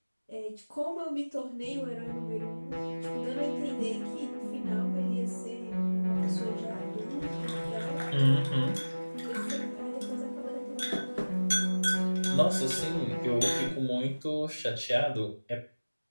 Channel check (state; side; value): inverted; both; correlation -1.00